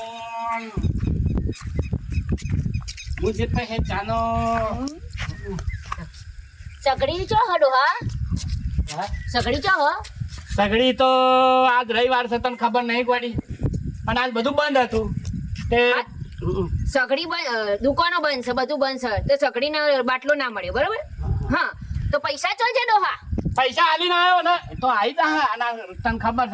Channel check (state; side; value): identical; both; correlation 1.00